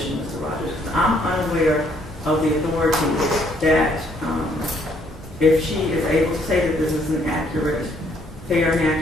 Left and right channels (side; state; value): both; normal; correlation 0.67